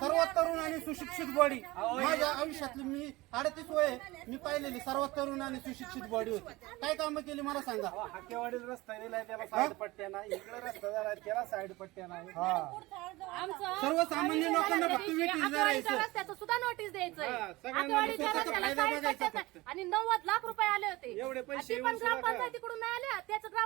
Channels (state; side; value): quieter; left; 20.6 dB